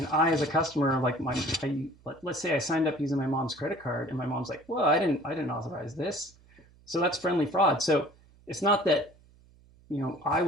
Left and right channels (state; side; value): noise; right; hum, 28 dB below the sound